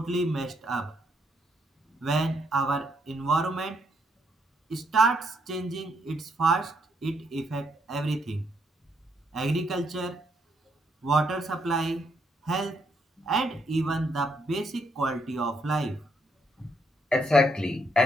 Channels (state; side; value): normal; both; correlation 0.74